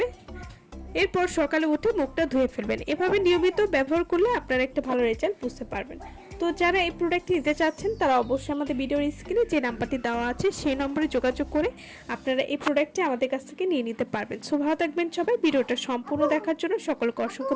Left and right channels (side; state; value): both; identical; correlation 1.00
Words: এরপর সকালে উঠে মুখটা ধুয়ে ফেলবেন। এভাবে নিয়মিত ব্যবহার করলে আপনারা একটা ভালো রেজাল্ট বুঝতে পারবেন। তো যারা এই প্রোডাক্টটি নিতে চাচ্ছেন তারা অবশ্যই আমাদের ভিডিওর স্ক্রিনে যে নাম্বারটি দেওয়া আছে সেই নম্বরে যোগাযোগ করে আপনারা এই প্রোডাক্টটি আমাদের কাছ থেকে নিয়ে নিতে পারবেন। সো ভালো থাকবেন সবাই। ভিডিওটা সম্পূর্ণ দেখার জন্য সকলকে অসংখ্য